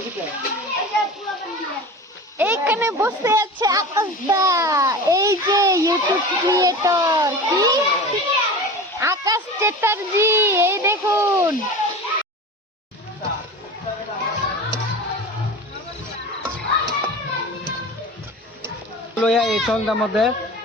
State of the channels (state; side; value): normal; both; correlation 0.33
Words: টিপে এইখানে বসে আছে আকাশদা এই যে ইউটিউব ক্রিয়েটর কি আকাশ চ্যাটার্জি এই দেখুন লয়া এই সন্ধ্যার মধ্যে